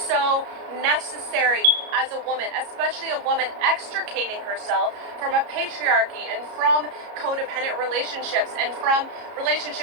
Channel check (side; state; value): left; late; 33 ms